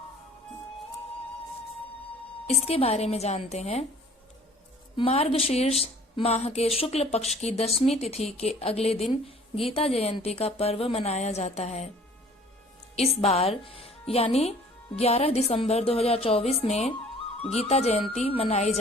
इसके बारे में जानते हैं। मार्गशीर्ष माह के शुक्ल पक्ष की 10वीं तिथि के अगले दिन गीता जयंती का पर्व मनाया जाता है। इस बार यानी 11 दिसंबर 2024 में गीता जयंती मनाई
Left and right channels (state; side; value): normal; both; correlation 0.51